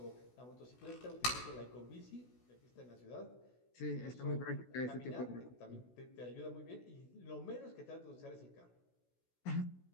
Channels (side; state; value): right; late; 16 ms